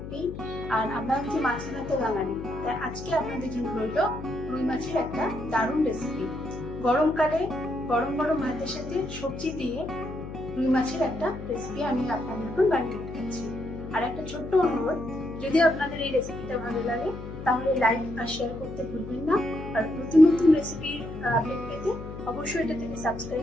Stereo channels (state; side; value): noise; left; hum, 10 dB below the sound